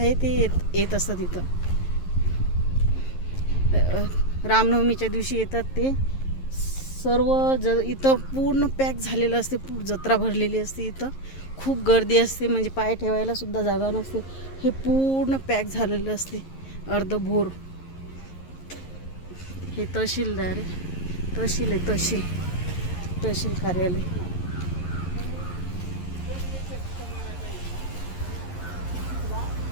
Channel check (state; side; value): late; right; 11 ms